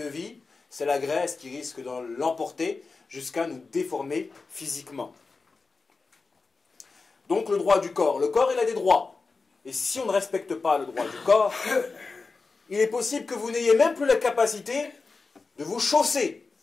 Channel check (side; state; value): right; quieter; 4.2 dB